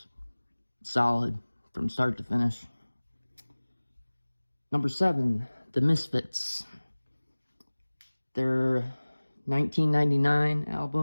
solid from start to finish. Number 7, The Misfits. Their 1999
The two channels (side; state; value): both; inverted; correlation -1.00